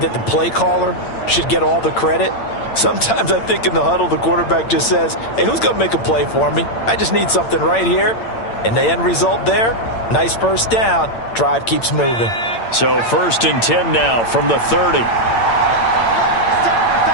that the play caller should get all the credit. Sometimes I think in the huddle, the quarterback just says, hey, who's going to make a play for me? I just need something right here. And the end result there, nice first down. Drive keeps moving. So 1st and 10 now from the 30.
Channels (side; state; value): right; late; 8.8 ms